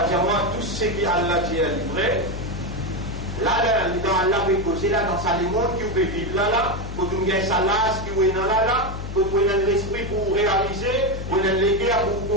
comment tout ce qui Allah dit est livré. Là, dans Allah peut causer, là, dans sa monde qui peut vivre là, pour nous gagner sa lasse qui est là, pour nous donner l'esprit pour réaliser, pour nous donner l'équerre pour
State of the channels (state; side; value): noise; left; hum, 8 dB below the sound